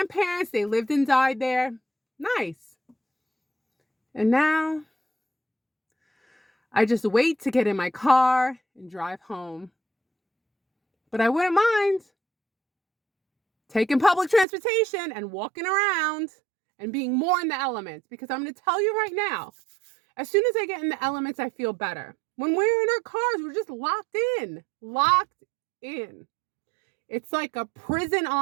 they lived and died there. Nice. And now, I just wait to get in my car and drive home. But I wouldn't mind taking public transportation and walking around and being more in the elements. Because I'm going to tell you right now, as soon as I get in the elements, I feel better. When we're in our cars, we're just locked in. Locked in. It's like a prison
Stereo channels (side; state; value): left; drops out; at 14.5 s